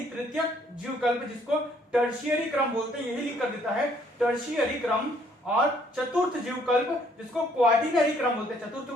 तृतीयक जीवकल्प, जिसको टर्शियरी क्रम बोलते हैं, यही लिख कर देता है टर्शियरी क्रम। और चतुर्थ जीवकल्प, जिसको क्वार्टिनरी क्रम बोलते हैं। चतुर्थ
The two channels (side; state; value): both; normal; correlation 0.64